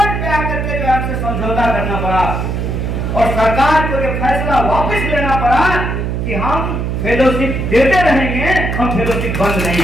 पे आकर के जो हमसे समझौता करना पड़ा और सरकार को ये फैसला वापस लेना पड़ा कि हम फेलोशिप देते रहेंगे, हम फेलोशिप बंद नहीं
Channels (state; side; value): noise; right; hum, 2 dB below the sound